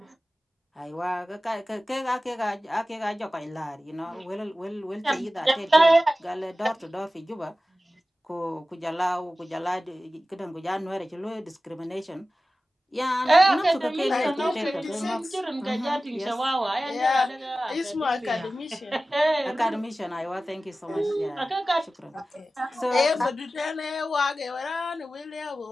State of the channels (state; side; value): normal; both; correlation 0.95